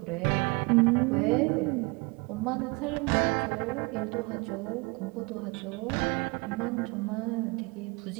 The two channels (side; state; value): left; quieter; 27.6 dB